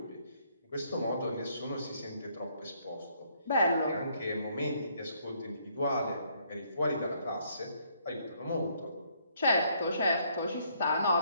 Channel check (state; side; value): inverted; both; correlation -0.68